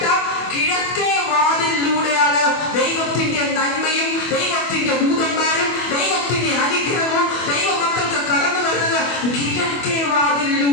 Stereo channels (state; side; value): late; right; 25 ms